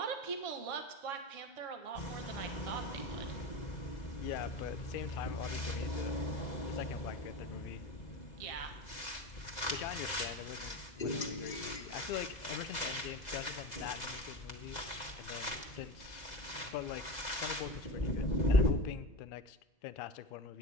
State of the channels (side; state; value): right; late; 2.0 ms